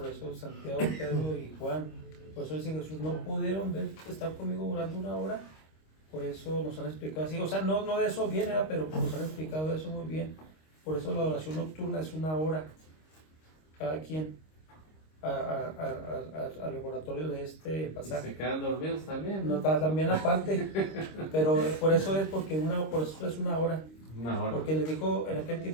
eso Santiago, Pedro y Juan, por eso dice Jesús: no pudieron estar conmigo orando una hora. Por eso nos han explicado así, o sea, no de eso viene, ¿verdad? Pero nos han explicado eso muy bien. Por eso la adoración nocturna es una hora, cada quien, al laboratorio de este Y pasaje. se quedan dormidos también, No, ¿no? también aparte, pero por eso es una hora. Una hora. Porque le dijo, en aquel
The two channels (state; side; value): late; right; 26 ms